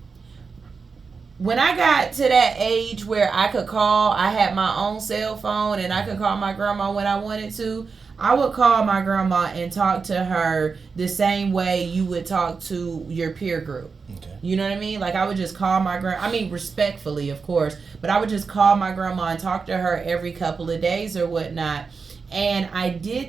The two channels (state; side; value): quieter; left; 5.0 dB